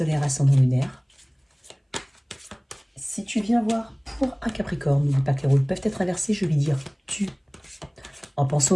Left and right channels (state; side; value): identical; both; correlation 1.00